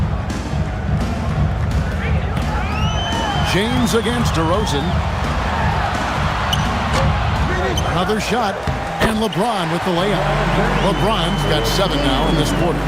James against DeRozan. Another shot. And LeBron with the layup. LeBron's got 7 now in this quarter.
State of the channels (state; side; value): identical; both; correlation 1.00